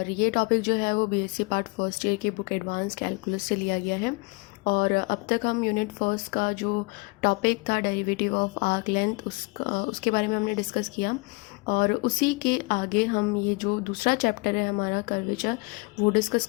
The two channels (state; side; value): quieter; right; 28.1 dB